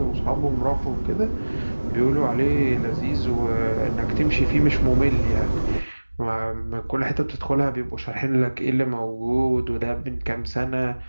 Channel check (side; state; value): both; inverted; correlation -1.00